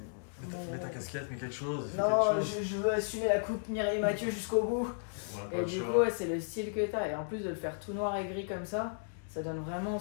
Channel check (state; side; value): silent; right; digital silence